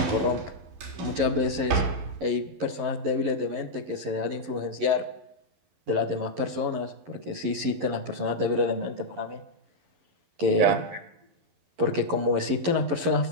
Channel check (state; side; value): late; left; 11 ms